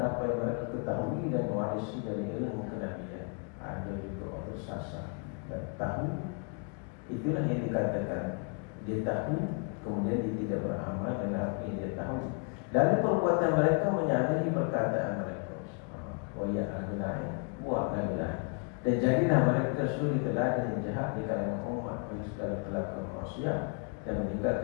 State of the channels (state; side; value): quieter; right; 37.0 dB